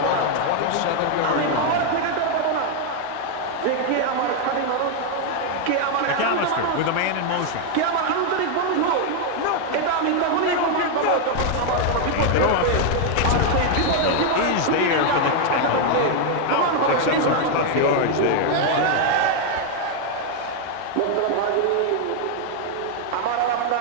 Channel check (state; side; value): different; both; correlation 0.01